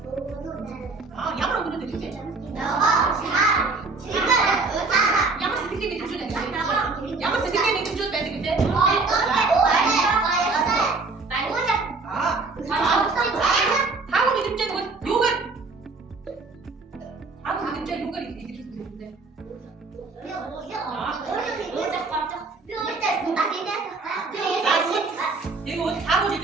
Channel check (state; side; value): quieter; left; 3.9 dB